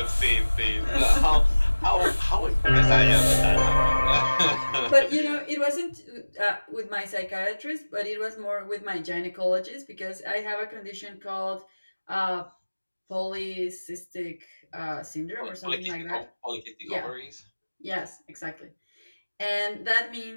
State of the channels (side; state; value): both; inverted; correlation -1.00